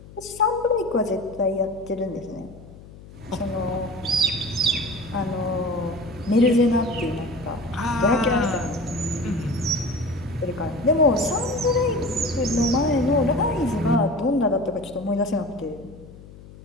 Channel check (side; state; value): left; noise; hum, 19 dB below the sound